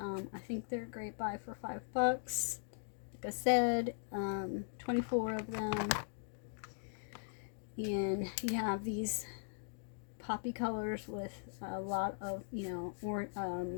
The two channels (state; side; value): silent; right; digital silence